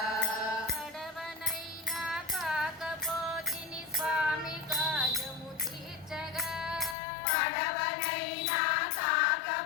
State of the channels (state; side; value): drops out; right; at 7.0 s